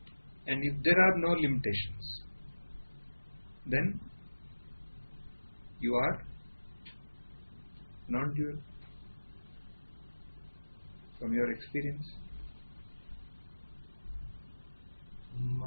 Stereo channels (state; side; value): inverted; both; correlation -1.00